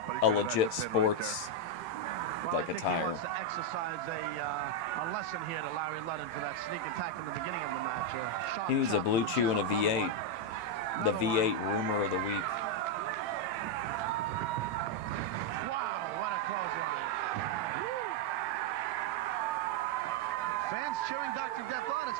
a legit sports Well, I like think he attire. wants to exercise a lesson here to Larry Ludden for that sneak attack in the beginning of the match. Sharp He needs a chop Blue to Chew and a Another V8. one. The Another one. V8 rumor of the week. Wow, what a clothesline. Fans cheering Dr. Death on. It's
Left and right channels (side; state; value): right; late; 18 ms